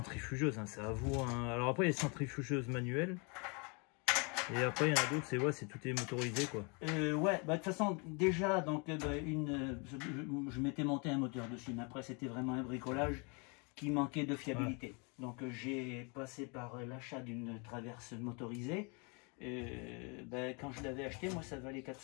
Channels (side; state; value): right; quieter; 33.0 dB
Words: hein, c'est à vous. Hein. Alors après il y a les centrifugeuses manuelles. Et après, il y en a d'autres, c'est tout est motorisé, quoi. Ouais, bah, de toute façon, déjà, donc, je m'étais monté un moteur dessus, mais après, c'était vraiment un bricolage qui manquait de fiabilité. Ouais. Donc, j'ai passé par l'achat d'une traverse motorisée. Quand je l'avais acheté, moi, ça valait